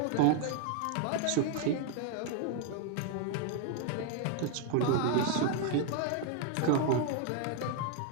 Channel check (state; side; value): different; both; correlation 0.00